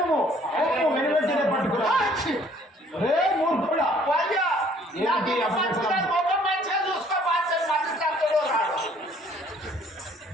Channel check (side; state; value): both; normal; correlation 0.59